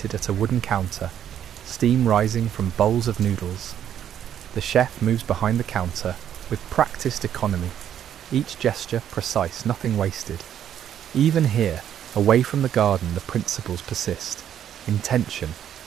at a wooden counter, steam rising from bowls of noodles. The chef moves behind the counter with practiced economy, each gesture precise, nothing wasted. Even here, away from the garden, the principles persist. Intention,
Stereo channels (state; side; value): quieter; left; 9.9 dB